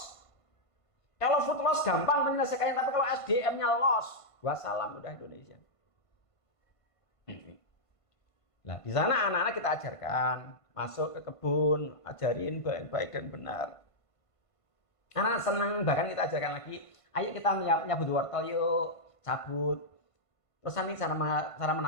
Kalau food loss gampang menyelesaikannya, tapi kalau SDM-nya loss, wassalam udah Indonesia. Nah, di sana anak-anak kita ajarkan, masuk ke kebun, ajarin baik-baik dan benar. Anak senang, bahkan kita ajarkan lagi, ayo kita nyabut wortel yuk, cabut. Terus nanti cara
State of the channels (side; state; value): right; late; 1.5 ms